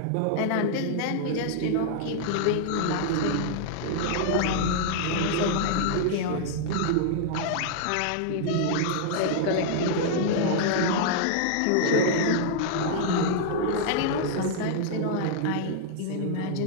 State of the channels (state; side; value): different; both; correlation -0.01